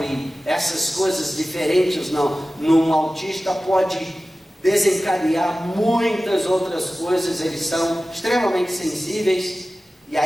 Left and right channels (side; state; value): both; normal; correlation 0.96